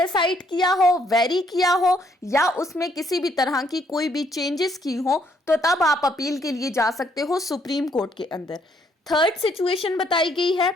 किया हो, वेरी किया हो, या उसमें किसी भी तरह की कोई भी चेंजेस की हो, तो तब आप अपील के लिए जा सकते हो सुप्रीम कोर्ट के अंदर। थर्ड सिचुएशन बताई गई है,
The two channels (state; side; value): normal; both; correlation 0.69